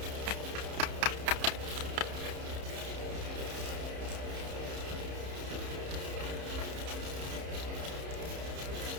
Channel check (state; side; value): late; left; 30 ms